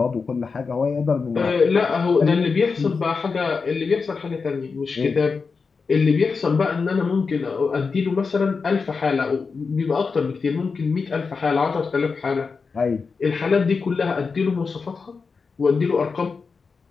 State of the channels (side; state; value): right; quieter; 4.9 dB